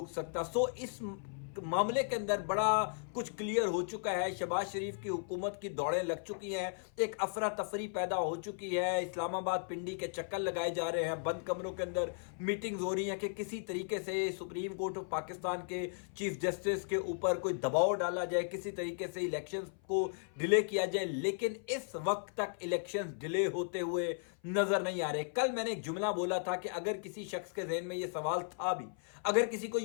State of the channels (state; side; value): silent; right; 54 dB below the other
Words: سکتا۔ سو اس معاملے کے اندر بڑا کچھ کلیئر ہو چکا ہے، شہباز شریف کی حکومت کی دوڑیں لگ چکی ہیں، ایک افراتفری پیدا ہو چکی ہے، اسلام آباد پنڈی کے چکر لگائے جا رہے ہیں، بند کمروں کے اندر میٹنگز ہو رہی ہیں کہ کسی طریقے سے سپریم کورٹ آف پاکستان کے چیف جسٹس کے اوپر کوئی دباؤ ڈالا جائے، کسی طریقے سے الیکشنز کو ڈیلے کیا جائے، لیکن اس وقت تک الیکشنز ڈیلے ہوتے ہوئے نظر نہیں آ رہے۔ کل میں نے ایک جملہ بولا تھا کہ اگر کسی شخص کے ذہن میں یہ سوال تھا بھی، اگر کسی کو